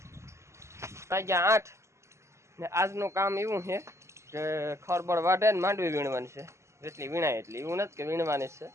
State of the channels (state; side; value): late; left; 0.13 ms